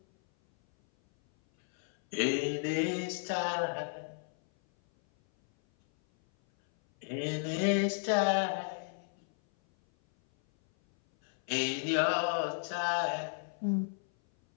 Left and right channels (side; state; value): right; silent; 56 dB below the other